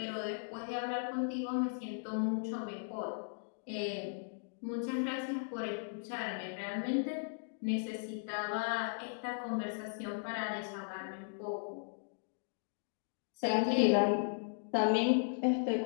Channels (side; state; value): right; silent; digital silence